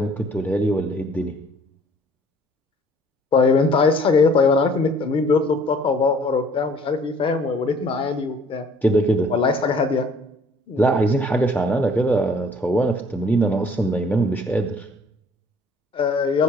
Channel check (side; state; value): both; normal; correlation 0.56